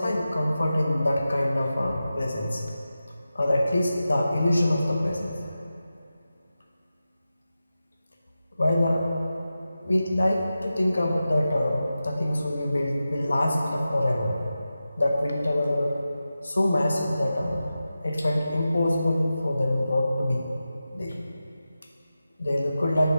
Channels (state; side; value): inverted; both; correlation -0.93